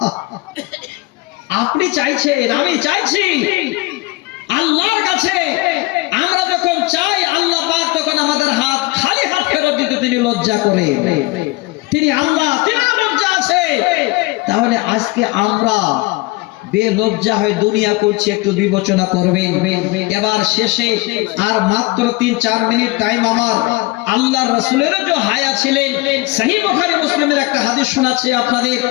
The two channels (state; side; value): quieter; right; 21.6 dB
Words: আপনি চাইছেন, আমি চাইছি, আল্লাহর কাছে আমরা যখন চাই আল্লাহ পাক তখন আমাদের হাত খালি হাত ফেরত দিতে তিনি লজ্জা করে। তিনি আল্লাহ, তিনি লজ্জা আছে। তাহলে আজকে আমরা বেলজ্জা হয়ে দুনিয়া করছি, একটু বিবেচনা করবেন। এবার শেষে আর মাত্র 3-4 মিনিট টাইম আমার। আল্লাহর রাসূলের যে হায়া ছিলেন, সহিহ বুখারী মুসলিমের একটা হাদিস শোনাচ্ছি আপনাদের,